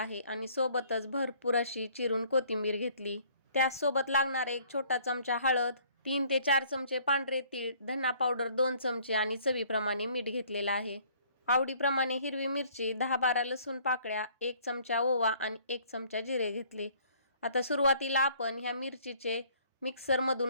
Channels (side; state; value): both; inverted; correlation -0.58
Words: आणि सोबतच भरपूर अशी चिरून कोथिंबीर घेतली। त्यासोबत लागणार 1 छोटा चमचा हळद, 3 ते 4 चमचे पांढरे तीळ, धना पावडर 2 चमचे आणि चवीप्रमाणे मीठ घेतलेला आहे। आवडीप्रमाणे हिरवी मिरची, 10-12 लसूण पाकळ्या, 1 चमचा ओवा आणि 1 चमचा जिरे घेतले। आता सुरुवातीला आपण ह्या मिरचीचे